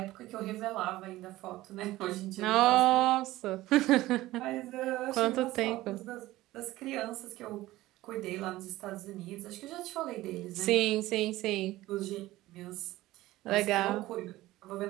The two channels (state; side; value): quieter; left; 17.0 dB